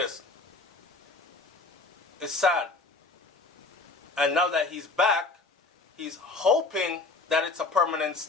It's sad. And now that he's back, he's hoping that it's a permanent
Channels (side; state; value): right; quieter; 3.6 dB